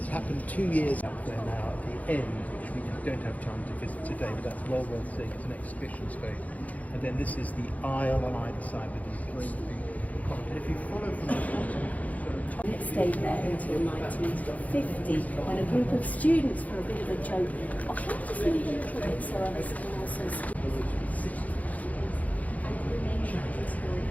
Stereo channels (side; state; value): right; late; 0.074 ms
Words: happened 2 years up there now at the end, which we don't have time to visit today, but that's well worth seeing. It's an exhibition space. And then this is the aisle on either side with these great big columns. And if you follow from the bottom, It stayed there until 1950 when a group of students, for a bit of a joke, oh, can I just leave a little bit so others can also see?